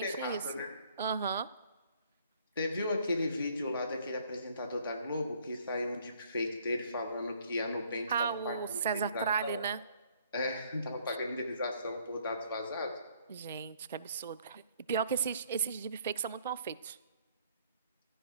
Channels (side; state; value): both; inverted; correlation -0.63